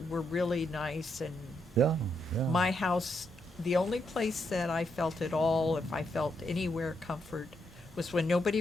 were really nice, and yeah, yeah. my house, the only place that I felt at all, if I felt anywhere comfort, was when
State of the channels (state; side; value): normal; both; correlation 0.79